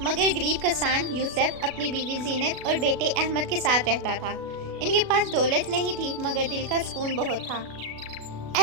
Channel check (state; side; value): late; left; 36 ms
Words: مگر غریب کسان یوسف اپنی بیوی زینت اور بیٹے احمد کے ساتھ رہتا تھا۔ ان کے پاس دولت نہیں تھی مگر دل کا سکون بہت تھا۔